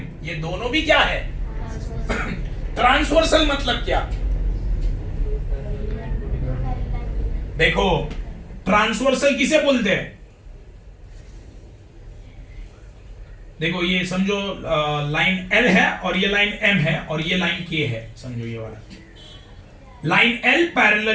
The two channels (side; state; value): both; identical; correlation 1.00